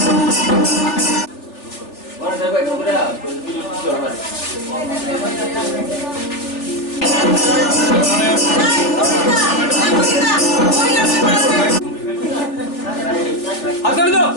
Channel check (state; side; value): late; right; 3.4 ms